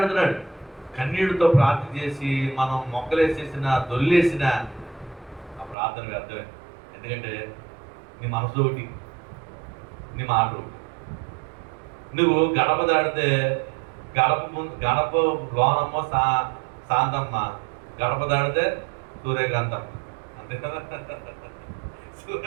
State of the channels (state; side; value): drops out; left; at 5.8 s